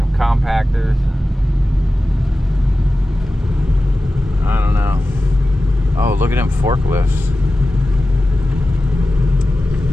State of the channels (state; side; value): normal; both; correlation 0.94